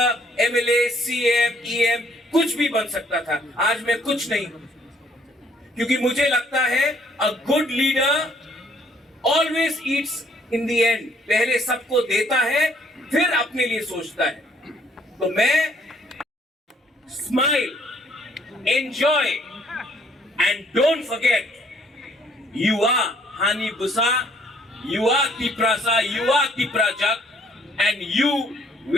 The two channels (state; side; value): normal; both; correlation 0.64